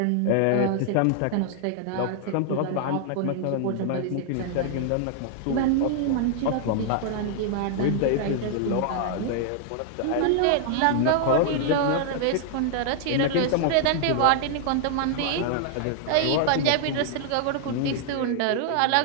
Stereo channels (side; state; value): both; different; correlation 0.00